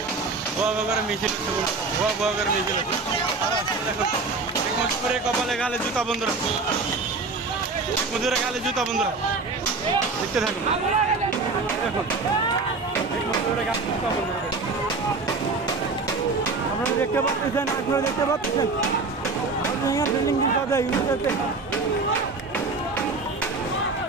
মিছিল হচ্ছে বন্ধুরা, মিছিল হচ্ছে দেখুন, মজুরে কপালে গালে জুতা বন্ধুরা, মজুরে গালে জুতা বন্ধুরা, দেখতে থাকুন। দেখুন আপনারা দেখতে পাচ্ছেন,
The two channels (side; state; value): left; quieter; 4.0 dB